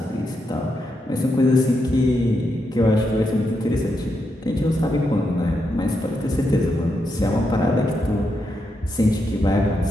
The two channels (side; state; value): both; normal; correlation 0.83